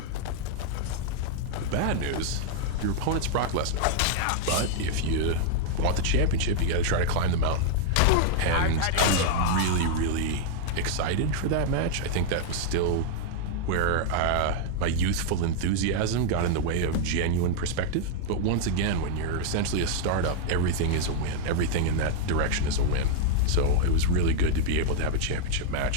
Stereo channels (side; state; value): both; different; correlation 0.00